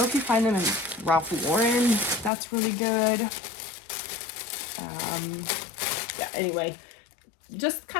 if you find them in Ralph Lauren, that's really good. Yeah, anyway, just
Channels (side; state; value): right; drops out; at 2.3 s